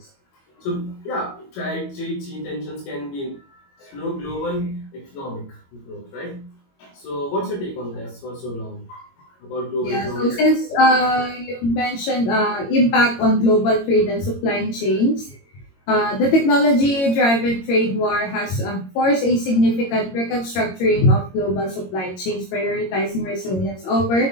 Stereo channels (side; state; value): right; late; 22 ms